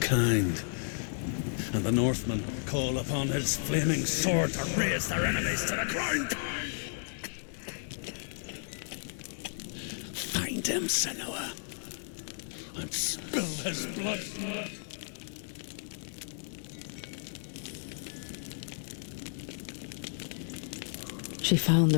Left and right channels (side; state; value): right; silent; digital silence